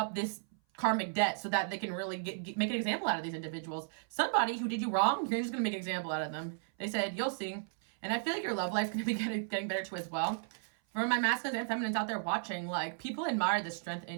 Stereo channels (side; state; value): left; silent; 55 dB below the other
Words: this karmic debt so that they can really make an example out of these individuals. Somebody who did you wrong, you're just going to make an example out of them. They said, you'll see. And I feel like your love life's going to be getting better too as well. For my masculines and feminines out there watching, like, people admire the strength